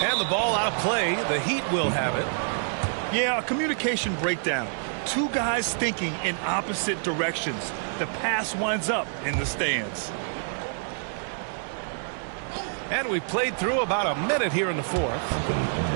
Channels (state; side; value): silent; left; 60 dB below the other